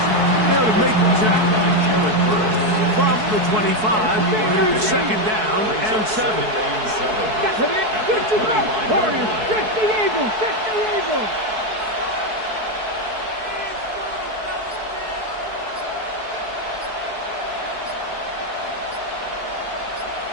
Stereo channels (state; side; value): late; left; 4.6 ms